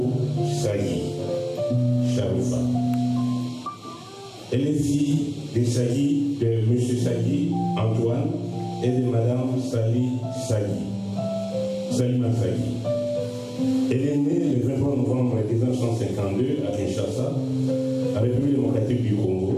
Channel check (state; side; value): identical; both; correlation 1.00